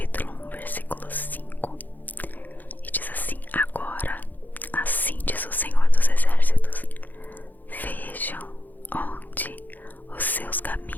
1, versículo 5. E diz assim: agora, assim diz o Senhor dos Exércitos, vejam onde os seus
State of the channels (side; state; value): right; late; 0.084 ms